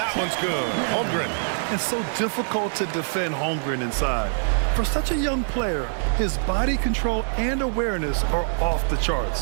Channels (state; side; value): silent; left; 62 dB below the other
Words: one's good. Holmgren. It's so difficult to defend Holmgren inside. For such a young player, his body control and awareness are off the